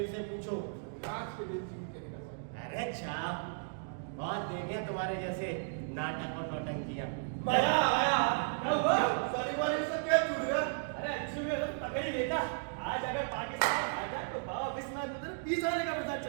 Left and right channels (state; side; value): silent; left; digital silence